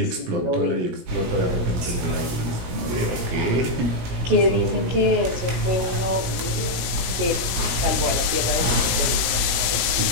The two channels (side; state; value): left; late; 16 ms